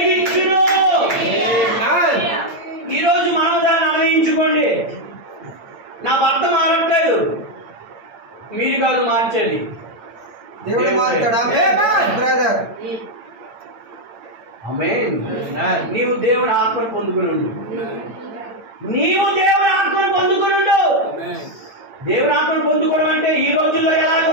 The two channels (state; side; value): late; left; 8.8 ms